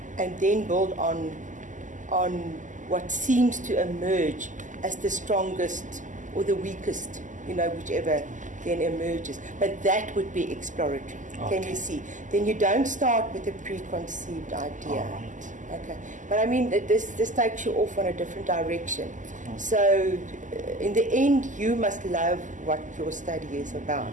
and then build on what seems to emerge as the strongest or the weakest, whichever then emerges. But that would be exploratory. Can you see? Then you don't start with a preconceived idea. Okay, but I mean, this takes you off on a different direction. So, in the end, you must love what your study is about.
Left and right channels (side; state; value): left; late; 0.37 ms